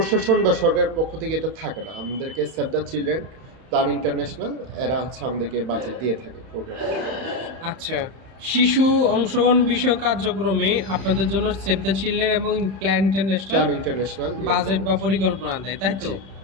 বা সরকারের পক্ষ থেকে এটা থাকে না। আমাদেরকে save the children, plan international, এরা হচ্ছে আমাদেরকে বাজেট দিয়ে থাকে প্রোগ্রাম। আচ্ছা, শিশু অংশগ্রহণ বিষয়ক কার্যক্রমে আপনাদের জন্য সেভ দ্য চিলড্রেন এবং plan international plan international budget বা পরিকল্পনা দেয়, তাই তো? জি।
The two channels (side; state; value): left; late; 31 ms